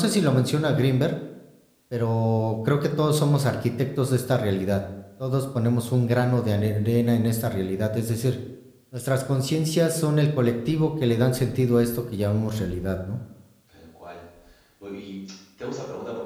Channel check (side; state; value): both; identical; correlation 1.00